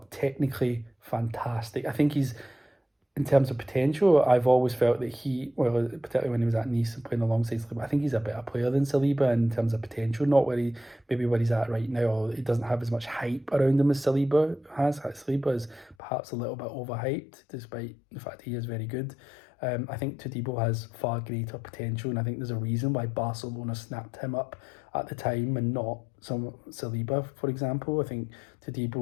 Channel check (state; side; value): drops out; right; at 16.0 s